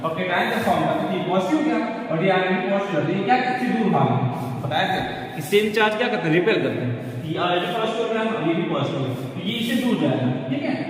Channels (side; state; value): both; identical; correlation 1.00